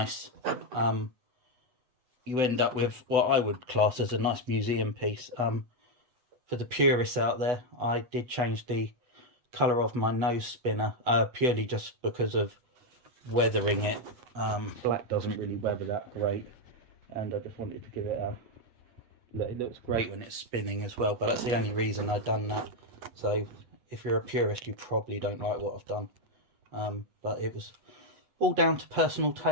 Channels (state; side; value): late; left; 8.3 ms